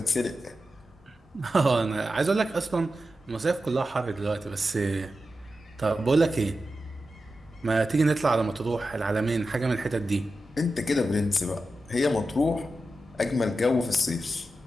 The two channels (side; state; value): both; normal; correlation 0.91